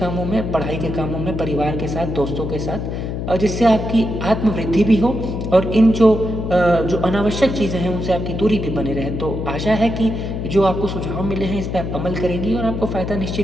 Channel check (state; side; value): noise; left; hum, 4 dB below the sound